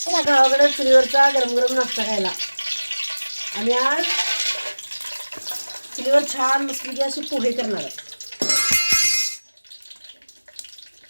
गावाकडे चुलीवरचा गरम गरम नाश्ता खायला. आणि आज चुलीवर छान मस्तपैकी अशी पोहे करणार आहे.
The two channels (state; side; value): inverted; both; correlation -1.00